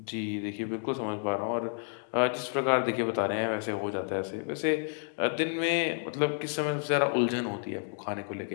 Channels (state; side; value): silent; right; 57 dB below the other